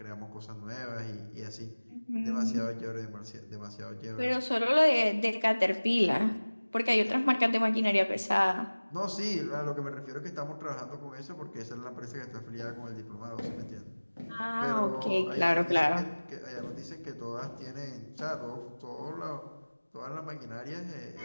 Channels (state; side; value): inverted; both; correlation -1.00